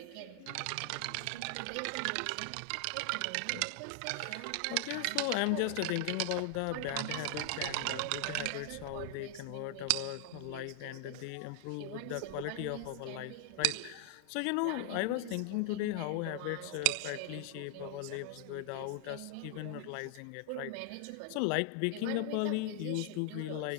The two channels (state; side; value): different; both; correlation 0.00